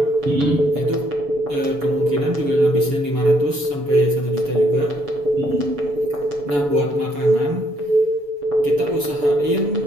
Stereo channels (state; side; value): late; left; 7.0 ms